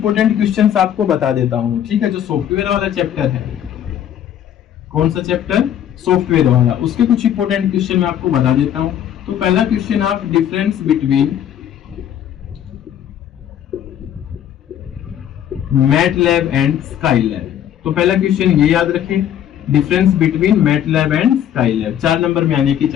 क्वेश्चंस आपको बता देता हूँ। ठीक है, जो सॉफ्टवेयर वाला चैप्टर है, कौन सा चैप्टर, सॉफ्टवेयर वाला, उसके कुछ इंपोर्टेंट क्वेश्चन मैं आपको बता देता हूँ। तो पहला क्वेश्चन आप difference between MATLAB and Skylab, तो पहला क्वेश्चन ये याद रखें, difference between MATLAB and Skylab, 4 number में आने की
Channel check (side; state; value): right; quieter; 10.3 dB